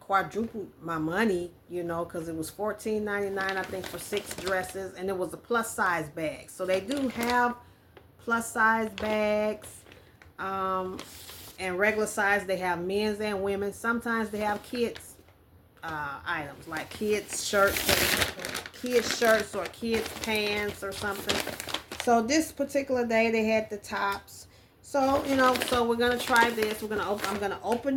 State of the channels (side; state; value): both; identical; correlation 1.00